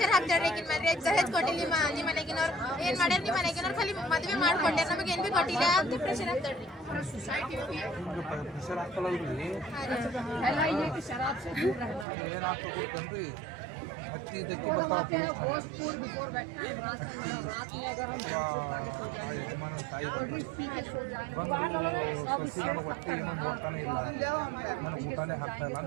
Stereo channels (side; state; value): left; drops out; at 12.1 s